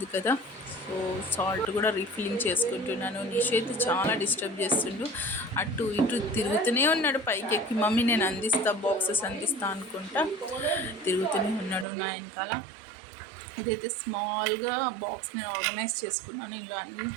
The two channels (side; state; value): left; drops out; at 11.9 s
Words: కదా. సో సాల్ట్ కూడా రీఫిల్లింగ్ చేసుకుంటున్నాను. నిష్ అయితే చాలా డిస్టర్బ్ చేస్తుండు, అటు ఇటు తిరుగుతూనే ఉన్నాడు పైకి ఎక్కి. మమ్మీ నేను అందిస్తా, బాక్సెస్ అందిస్తా అనుకుంటా తిరుగుతూనే ఉన్నాడు నా వెనకాల. ఇదైతే స్మాల్గా బాక్స్ నేను ఆర్గనైజ్ చేసుకున్నాను. ఇందులో అన్ని